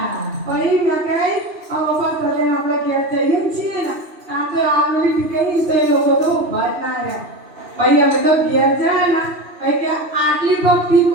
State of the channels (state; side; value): late; left; 2.9 ms